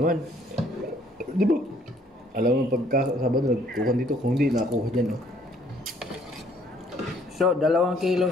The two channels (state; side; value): normal; both; correlation 0.62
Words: Di ba? Alam mo, pagka Sabado, nagkuhan dito. Kung hindi, nakuha dyan, oh. So, 2 kilo.